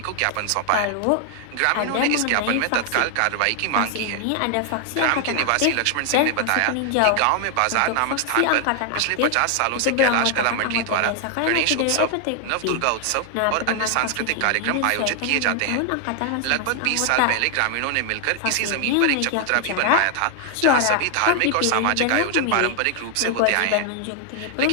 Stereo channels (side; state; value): both; different; correlation 0.00